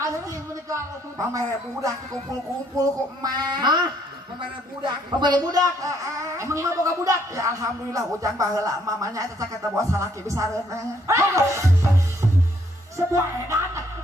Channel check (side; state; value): both; normal; correlation 0.68